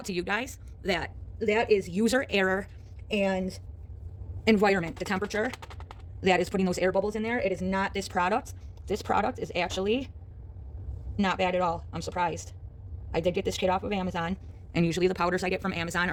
to you guys, that is user error and environment, the temperature that is putting those air bubbles in there. It is not this product. This product is actually not bad at all. I'm surprised. I did get this kit off of Amazon, and usually the powders I get from Amazon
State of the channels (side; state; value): both; identical; correlation 1.00